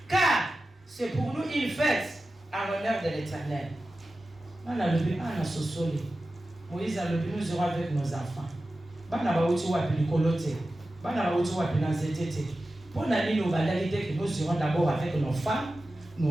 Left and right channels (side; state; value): both; normal; correlation 0.94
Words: Car c'est pour nous une fête en l'honneur de l'Éternel. Moïse a le but, nous irons avec nos enfants. Nous irons d'abord avec nos femmes,